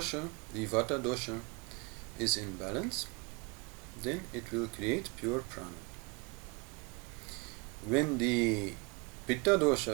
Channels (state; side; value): quieter; left; 29.4 dB